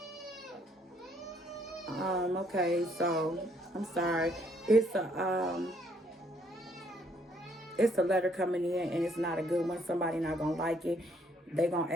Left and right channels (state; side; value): normal; both; correlation 0.68